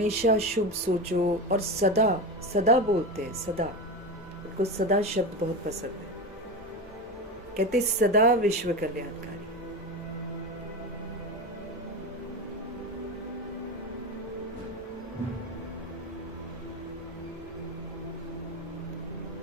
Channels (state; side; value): normal; both; correlation 0.21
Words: शुभ सोचो, और सदा सदा बोलते हैं, सदा। उनको सदा शब्द बहुत पसंद है। कहते सदा विश्व कल्याणकारी।